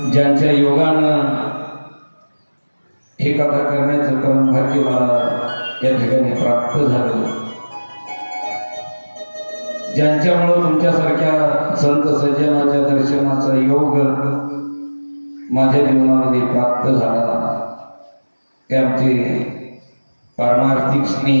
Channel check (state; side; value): inverted; both; correlation -1.00